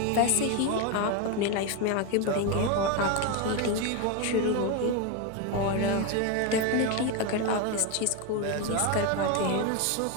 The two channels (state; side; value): different; both; correlation 0.03